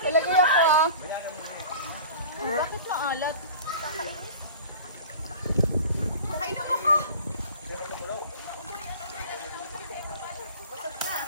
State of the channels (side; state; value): both; inverted; correlation -0.40